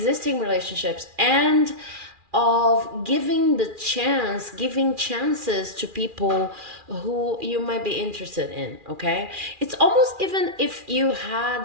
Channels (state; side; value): late; left; 2.4 ms